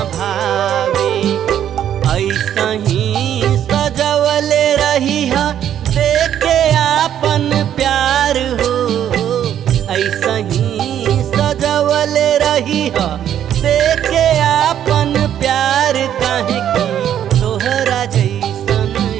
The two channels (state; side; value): quieter; left; 10.3 dB